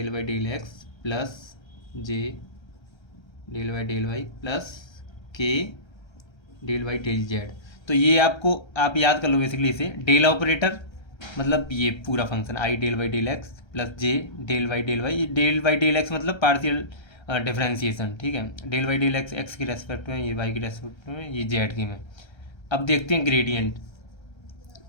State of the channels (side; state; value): right; late; 1.3 ms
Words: by del x plus j del by del y plus k del by del z. तो ये आप याद कर लो बेसिकली इसे डेल ऑपरेटर मतलब ये पूरा function i del by del x plus j del by del y. ये डेल बाई डेल एक्स मतलब पार्शियल डिफरेंशिएशन, ठीक है। Del by del x x के रेस्पेक्ट में, ये वाई के रेस्पेक्ट में, ये जेड के में। अब देखते हैं ग्रेडियंट।